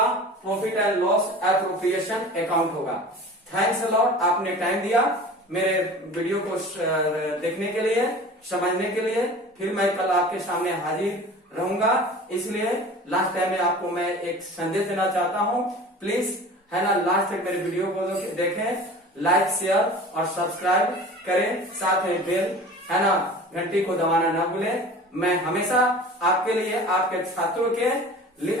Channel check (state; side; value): normal; both; correlation 0.40